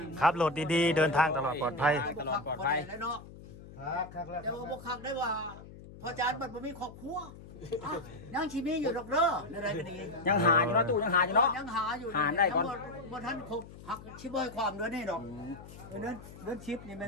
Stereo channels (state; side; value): noise; left; hum, 17 dB below the sound